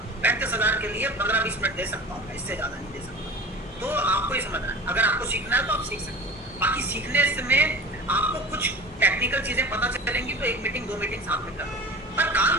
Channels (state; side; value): normal; both; correlation 0.37